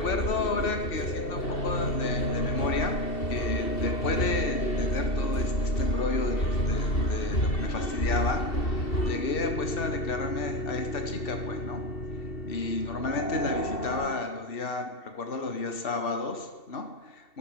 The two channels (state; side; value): late; right; 2.7 ms